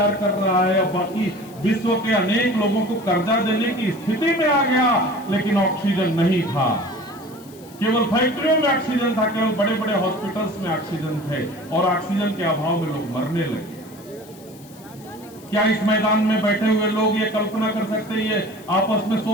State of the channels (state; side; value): noise; left; hiss, 23 dB below the sound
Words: कर रहा है, और बाकी विश्व के अनेक लोगों को कर्जा देने की स्थिति में आ गया, लेकिन ऑक्सीजन नहीं था। केवल फैक्ट्रियों में ऑक्सीजन था, केवल बड़े बड़े हॉस्पिटल्स में ऑक्सीजन थे, और ऑक्सीजन के अभाव में लोग मरने लगे। क्या इस मैदान में बैठे हुए लोग ये कल्पना कर सकते हैं, ये आपस में